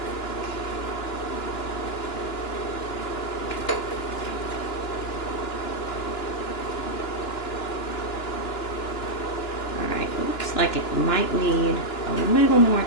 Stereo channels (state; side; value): late; right; 2.9 ms